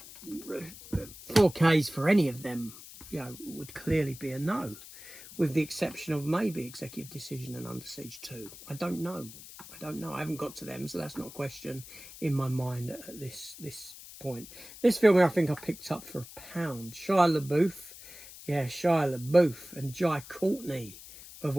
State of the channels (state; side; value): noise; left; hiss, 16 dB below the sound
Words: 4Ks for any of them, you know, would clearly be a no, with the exception of maybe Executive Decision and Under Siege 2. I don't know. I haven't got to them, so that's not a question in my mind at this point. This film I think I picked up for £1. Shia LaBeouf. Yeah, Shia LaBeouf and Jai Courtney, of